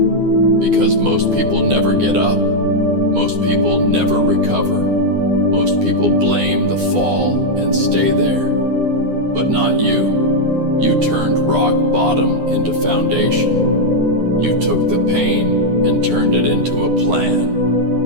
Because most people never get up, most people never recover, most people blame the fall and stay there. But not you. You turned rock bottom into foundation. You took the pain and turned it into a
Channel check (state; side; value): late; left; 9.7 ms